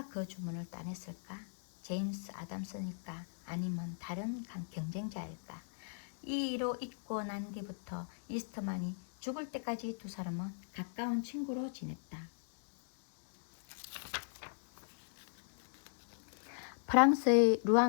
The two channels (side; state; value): right; silent; digital silence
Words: 그 주문을 따냈을까? 제임스 아담스일까? 아니면 다른 경쟁자일까? 이 일로 잊고 난 뒤부터 이스트만이 죽을 때까지 두 사람은 가까운 친구로 지냈다. 프랑스의